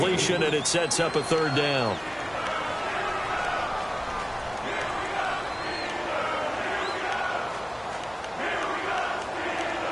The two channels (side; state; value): left; noise; hum, 26 dB below the sound